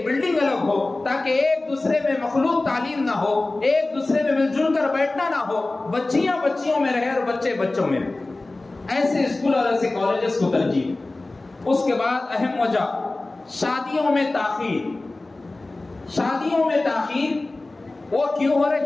بلڈنگ الگ ہو، تاکہ ایک دوسرے میں مخلوط تعلیم نہ ہو، ایک دوسرے میں مل جل کر بیٹھنا نہ ہو، بچیاں بچیوں میں رہے اور بچے بچوں میں رہے. ایسے اسکول اور ایسے کالجز کو ترجیح. اس کے بعد اہم وجہ شادیوں میں تاخیر. شادیوں میں تاخیر وہ کیوں ہو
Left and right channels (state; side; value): quieter; right; 3.0 dB